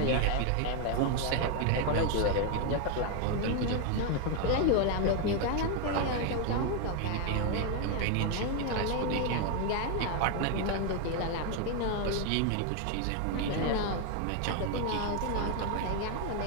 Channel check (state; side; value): different; both; correlation 0.01